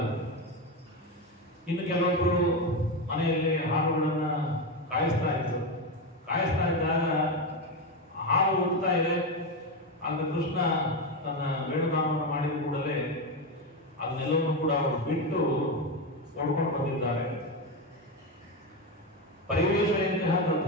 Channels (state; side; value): normal; both; correlation 0.13